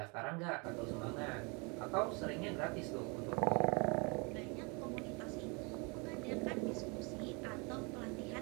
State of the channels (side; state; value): left; quieter; 31.0 dB